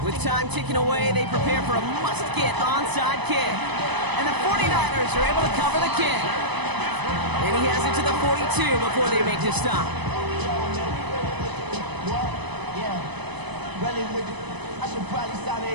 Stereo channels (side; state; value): left; late; 1.0 ms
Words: With time ticking away, they prepare for a must-get onside kick. And the 49ers are able to cover the kick. And he has it to the 42 before they make the stop. Really with it. I should probably sign a